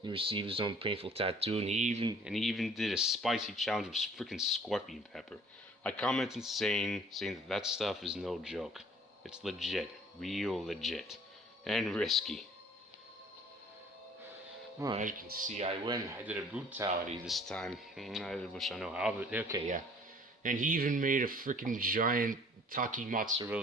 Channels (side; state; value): both; normal; correlation 0.53